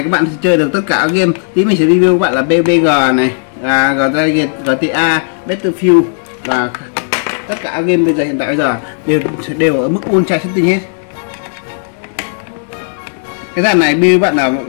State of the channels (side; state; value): right; silent; digital silence